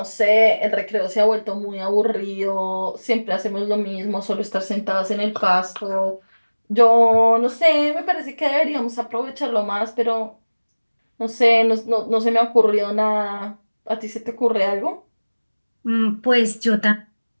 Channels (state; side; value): inverted; both; correlation -1.00